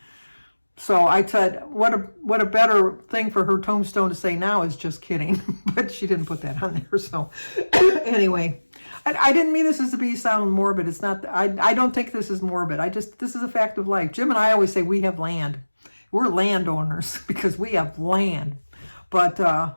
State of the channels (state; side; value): inverted; both; correlation -1.00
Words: So I said, what a better thing for her tombstone to say now is just kidding. But she didn't put that on there. So anyway, I didn't mean this as to be sound morbid. It's not. I don't think this is morbid. This is a fact of life. Jim and I always say we have land. We're landowners because we have land. But